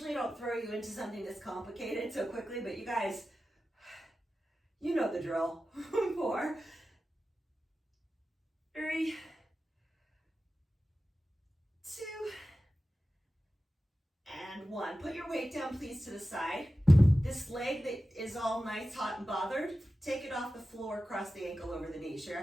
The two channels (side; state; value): both; normal; correlation 0.94